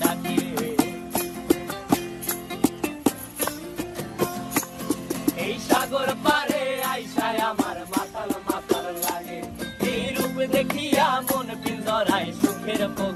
ডাকে। এই সাগর পারে আইসায় আমার মাতাল মাতাল লাগে, এই রূপ দেখিয়া মন পিঞ্জরায় সুখের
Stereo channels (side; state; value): both; identical; correlation 1.00